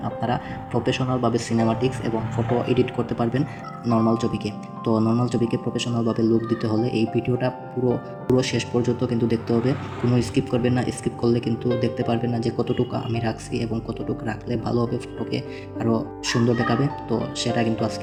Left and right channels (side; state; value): both; identical; correlation 1.00